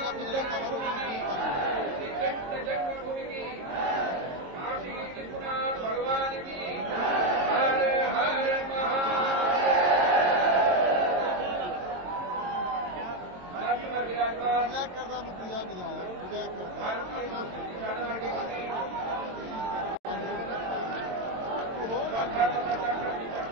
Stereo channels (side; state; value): left; late; 22 ms